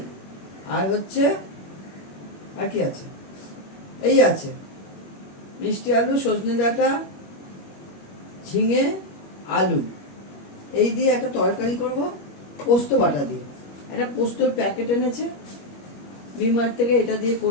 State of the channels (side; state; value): right; late; 21 ms